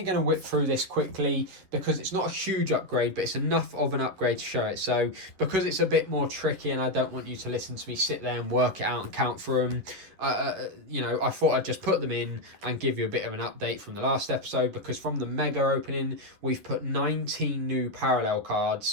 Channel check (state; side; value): late; left; 10 ms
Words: going to whip through this quickly because it's not a huge upgrade, but it's enough of an upgrade to show it. So because it's a bit more tricky and I don't want you to listen to me sit there and work it out and count through them, you know, I thought I'd just put them in and give you a bit of an update from the last episode, because from the mega opening, we've put 19 new parallel